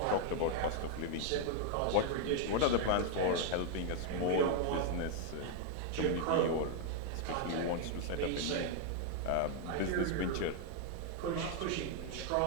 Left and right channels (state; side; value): different; both; correlation 0.00